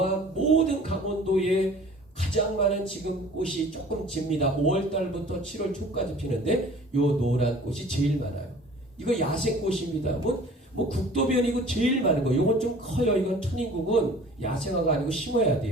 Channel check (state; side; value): normal; both; correlation 0.48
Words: 모든 강원도에 가장 많은 지금 꽃이 조금 집니다. 5월달부터 7월 초까지 피는데 요 노란 꽃이 제일 많아요. 이거 야생꽃입니다. 뭐 국도변이고 제일 많은 거. 요건 좀 커요. 이건 천인국은 야생화가 아니고 심어야